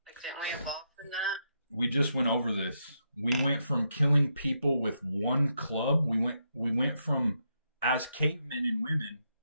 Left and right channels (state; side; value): inverted; both; correlation -0.81